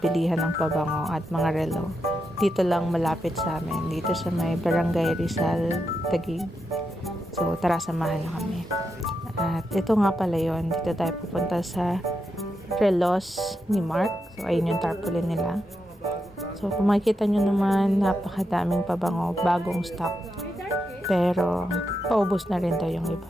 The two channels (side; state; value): both; normal; correlation 0.85